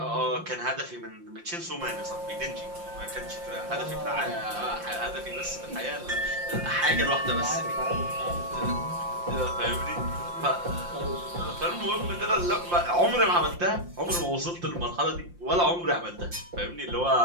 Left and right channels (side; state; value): left; late; 5.7 ms